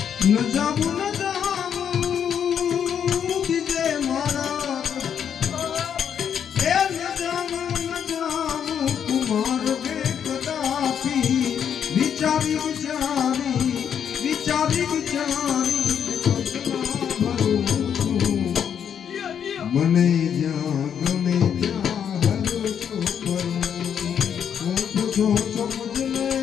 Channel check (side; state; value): right; quieter; 8.3 dB